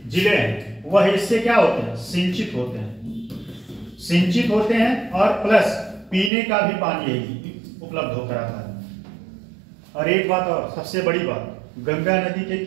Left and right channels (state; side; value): drops out; left; at 6.3 s